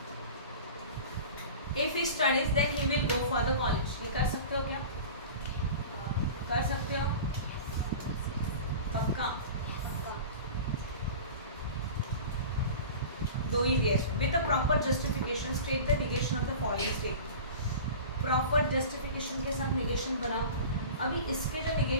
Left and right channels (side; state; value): both; inverted; correlation -0.36